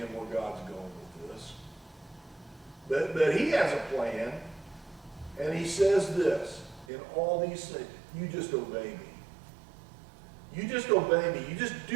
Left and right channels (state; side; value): drops out; left; at 6.9 s